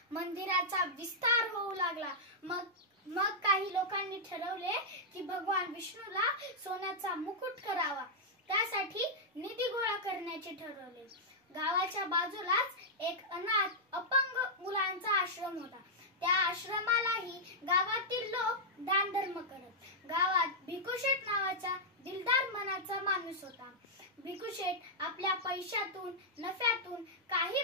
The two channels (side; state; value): both; normal; correlation -0.07